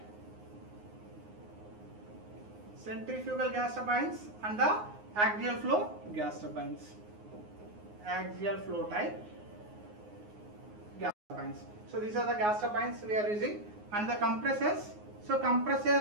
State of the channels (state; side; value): late; left; 9.6 ms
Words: centrifugal gas turbines, and the axial flow gas turbines, axial flow type gas turbines. So these are the gas turbines we are using, and the compressors. So